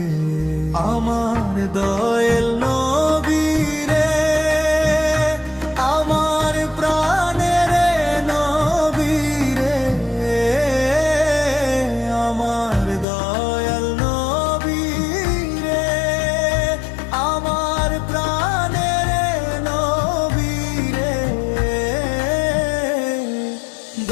আমার দয়াল নবী রে, আমার প্রাণের নবী রে, আমার দয়াল নবী রে, আমার প্রাণের নবী রে।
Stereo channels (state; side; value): drops out; right; at 13.1 s